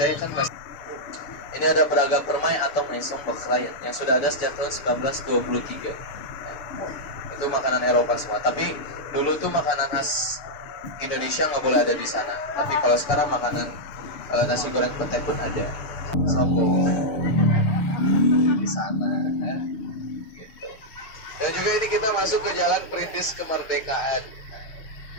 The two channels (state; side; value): late; right; 6.8 ms